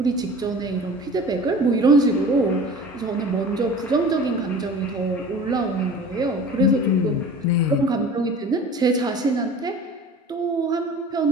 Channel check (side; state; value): both; normal; correlation 0.41